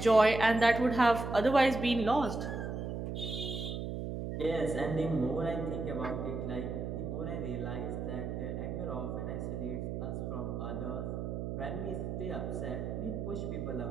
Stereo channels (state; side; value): noise; right; hum, 4 dB below the sound